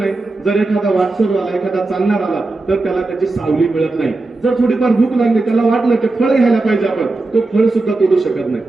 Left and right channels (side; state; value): left; quieter; 3.2 dB